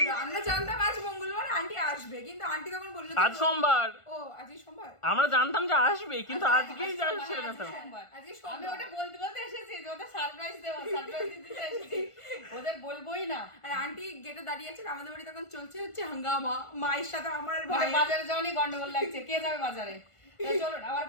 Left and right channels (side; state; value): right; late; 1.5 ms